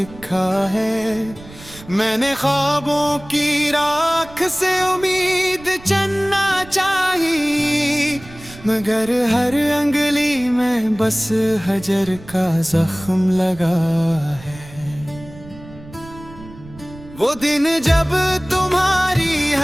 है। मैंने ख्वाबों की राख से उम्मीद चुनना चाहिए, मगर हर अंगली में बस हजर का जख्म लगा है। वो दिन जब तुम्हारी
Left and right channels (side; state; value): right; noise; rumble, 19 dB below the sound